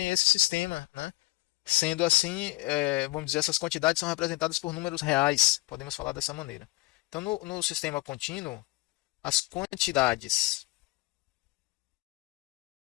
esse sistema, né? Sendo assim, vamos dizer, essas quantidades são representadas por números reais, podemos falar dessa maneira. Então, no sistema contínuo, as quantidades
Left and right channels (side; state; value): right; quieter; 21.5 dB